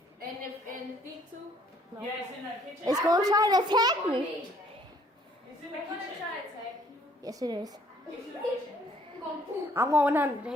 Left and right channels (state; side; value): normal; both; correlation 0.62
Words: And the thing too. Yeah, it's in the kitchen. It's gonna try to attack me. It's in the I'm gonna kitchen. try to attack you. Yes, it is. It's in the kitchen. I'm going to poop. I'm going under the